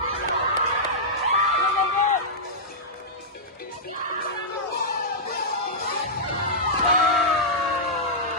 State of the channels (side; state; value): both; normal; correlation -0.12